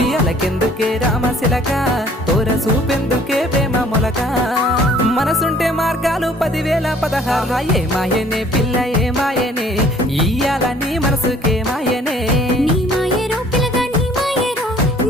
రామశిలక తోర చూపెందుకే ప్రేమ మొలక మనసుంటే మార్గాలు 10,016 ఏ మాయనే పిల్ల ఏ మాయనే ఇయ్యాల నీ మనసుకే మాయనే నీ మాయేరో పిల్లగా నీ మాయేరో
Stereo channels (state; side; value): normal; both; correlation 0.56